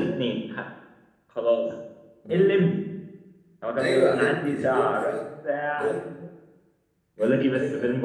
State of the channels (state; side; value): identical; both; correlation 1.00